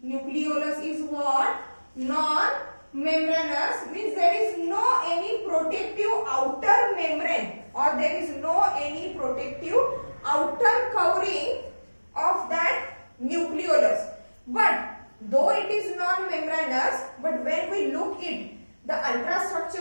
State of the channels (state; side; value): inverted; both; correlation -1.00